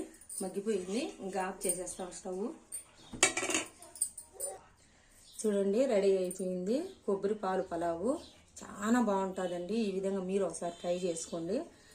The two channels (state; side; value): identical; both; correlation 1.00